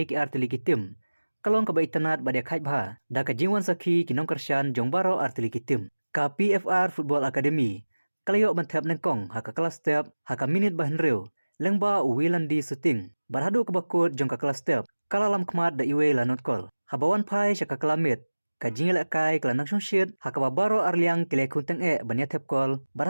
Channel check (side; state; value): both; inverted; correlation -1.00